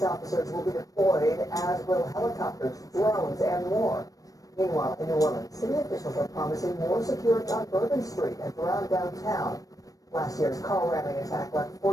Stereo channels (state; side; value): late; right; 0.17 ms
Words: officers will be deployed, as will helicopters, drones, and more. Meanwhile, in New Orleans, city officials are promising more security on Bourbon Street and around downtown. Last year's car ramming attack left